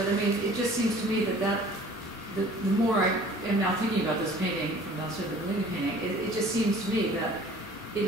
I mean, it just seems to me that the more I am now thinking about this painting from downstairs, the Bellini painting, it just seems to me that it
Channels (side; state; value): both; normal; correlation 0.49